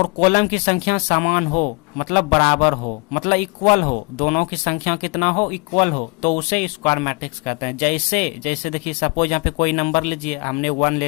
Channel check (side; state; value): right; quieter; 30.2 dB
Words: कॉलम की संख्या समान हो मतलब बराबर हो, मतलब इक्वल हो, दोनों की संख्या कितना हो, इक्वल हो, तो उसे स्क्वायर मैट्रिक्स कहते हैं। जैसे देखिए सपोज यहाँ पे कोई नंबर लीजिए, हमने 1 ले